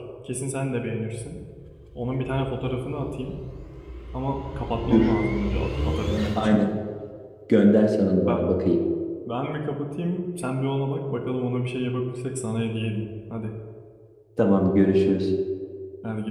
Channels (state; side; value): identical; both; correlation 1.00